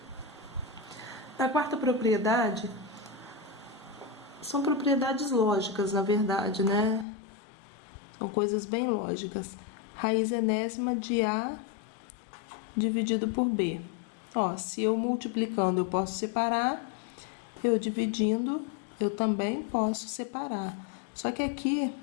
Na quarta propriedade, são propriedades lógicas, na verdade, né? São coisas bem lógicas. Raiz enésima de A dividido por B. Ó, se eu multiplicando eu posso separar, eu dividindo eu também posso separar. Só que aqui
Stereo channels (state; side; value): drops out; right; at 7.1 s